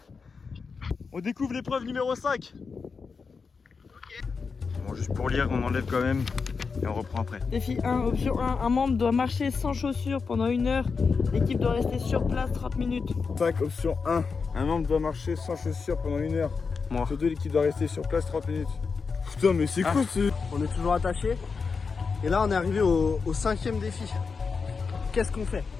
On découvre l'épreuve numéro 5. Bon, juste pour lire, on enlève quand même. Et on reprend après. Défi 1, option 1, un membre doit marcher sans chaussures pendant 1 heure. L'équipe doit rester sur place 30 minutes. 5, option 1. Un membre doit marcher sans chaussures pendant 1 heure. Moi. Option 2, l'équipe doit rester sur place 30 minutes. Putain, mais c'est quoi ce... On est toujours attaché. Et là on est arrivé au 5e défi. Qu'est-ce qu'on fait?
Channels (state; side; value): quieter; right; 5.1 dB